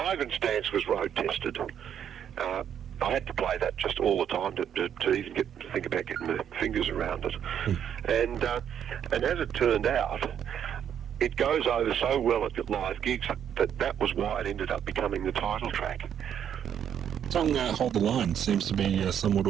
Dance was road tested. I had to play that just all the time to even think about getting my fingers around it. And as it turned out, it goes over so well at live gigs that was why it ended up becoming the title track. The song Hold the Line seems to be somewhat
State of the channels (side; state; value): left; quieter; 9.1 dB